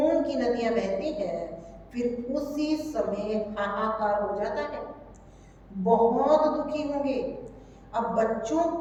की नदियां बहती हैं, फिर उसी समय हाहाकार हो जाता है, बहुत दुखी होंगे। अब बच्चों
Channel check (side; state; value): both; identical; correlation 1.00